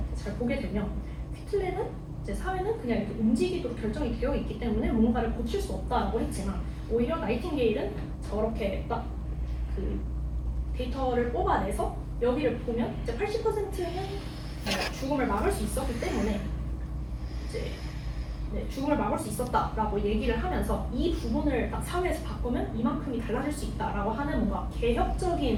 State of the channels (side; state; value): both; identical; correlation 1.00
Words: 잘 보게 되면 퀴틀레는 이제 사회는 그냥 이렇게 움직이도록 결정이 되어 있기 때문에 뭔가를 고칠 수 없다라고 했지만 오히려 나이팅게일은 저렇게 딱 그 데이터를 뽑아내서 여기를 보면 이제 80%는 죽음을 막을 수 있었기 때문에 이제 죽음을 막을 수 있었다라고 얘기를 하면서 이 부분을 딱 사회에서 바꾸면 이만큼이 달라질 수 있다라고 하는 뭔가